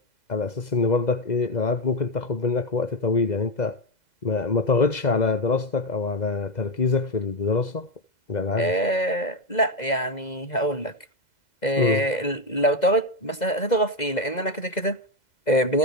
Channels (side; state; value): right; late; 2.0 ms